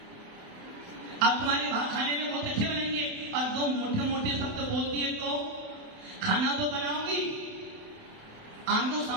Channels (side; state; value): left; late; 28 ms